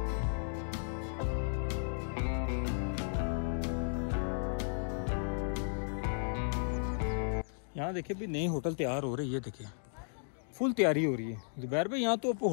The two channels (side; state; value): right; silent; digital silence